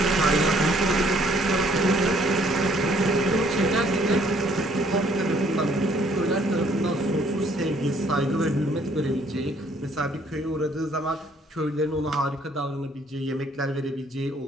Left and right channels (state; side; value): normal; both; correlation 0.63